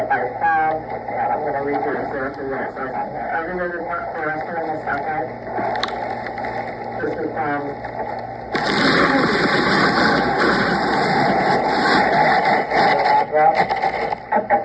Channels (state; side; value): identical; both; correlation 1.00